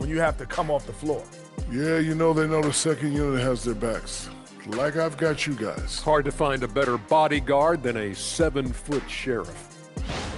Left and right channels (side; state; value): both; identical; correlation 1.00